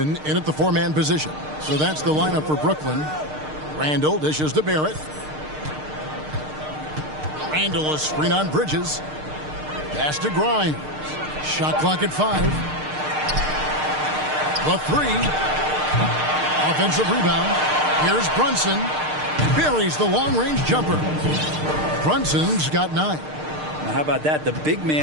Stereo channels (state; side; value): late; left; 6.6 ms